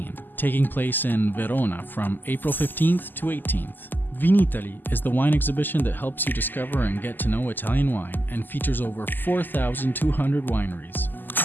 taking place in Verona from April 15th to 18th. Vinitaly is the wine exhibition that helps you discover and get to know Italian wine and features over 4,200 wineries.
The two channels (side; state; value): right; late; 0.089 ms